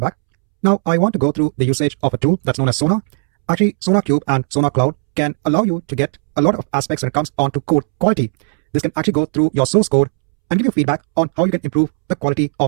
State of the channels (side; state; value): left; silent; 69 dB below the other